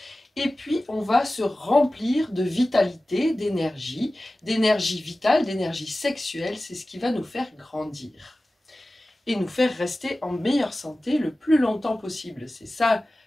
Et puis on va se remplir de vitalité, d'énergie vitale, d'énergie sexuelle, c'est ce qui va nous faire grandir. Et nous faire rester en meilleure santé le plus longtemps possible. C'est ça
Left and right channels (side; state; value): both; normal; correlation 0.96